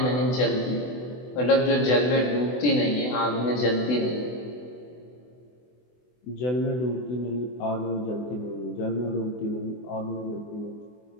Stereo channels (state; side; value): late; right; 24 ms